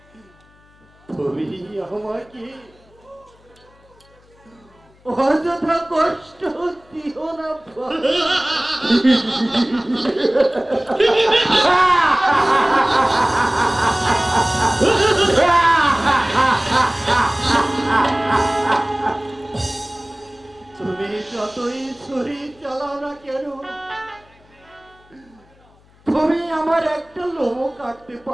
তুমি আমাকে অযথা কষ্ট দিও না ভাই। তুমি যতই ছুরি চালাও না কেন, তুমি আমার একটা লোম কাটতে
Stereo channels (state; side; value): noise; left; hum, 30 dB below the sound